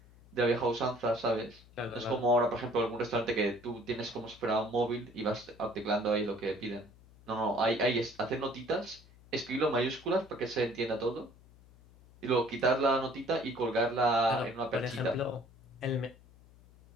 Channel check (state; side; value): noise; left; hum, 24 dB below the sound